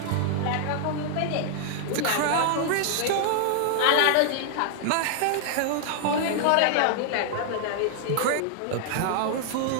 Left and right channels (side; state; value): both; different; correlation -0.01